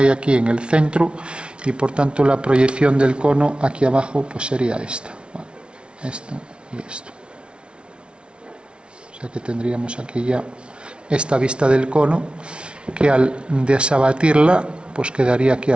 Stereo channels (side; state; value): left; late; 0.058 ms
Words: aquí en el centro y por tanto la proyección del cono aquí abajo pues sería esta, ¿vale? Esto y esto. O sea que tendríamos aquí ya esta vista del cono que al desabatirla pues quedaría aquí